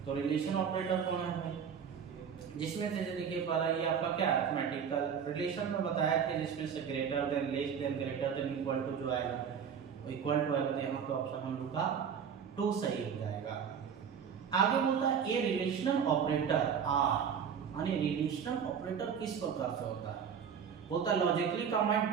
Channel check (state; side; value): quieter; left; 7.4 dB